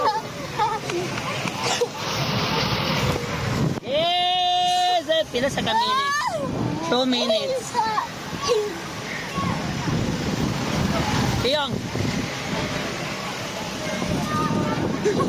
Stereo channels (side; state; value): both; identical; correlation 1.00